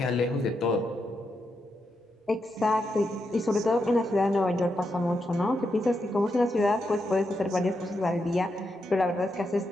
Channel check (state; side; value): normal; both; correlation 0.84